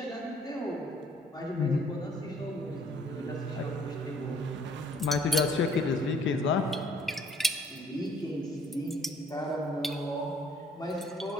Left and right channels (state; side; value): normal; both; correlation 0.60